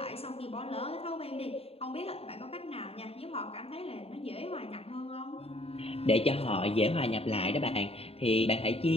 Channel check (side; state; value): right; late; 0.29 ms